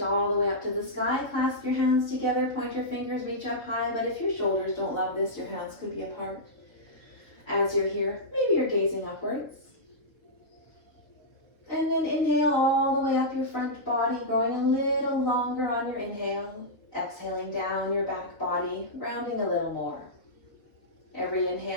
all the way up to the sky. Clasp your hands together, point your fingers, reach up high. But if your shoulders don't love this, your hands could be apart. As you're here, maybe you're gazing upwards. And then inhale all the way up your front body, growing a little longer on your inhale. Exhaling down your back body, rounding a little more. Every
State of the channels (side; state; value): right; late; 3.9 ms